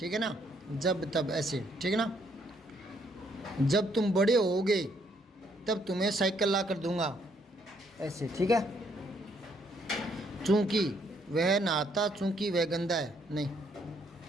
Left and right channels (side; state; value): both; normal; correlation 0.70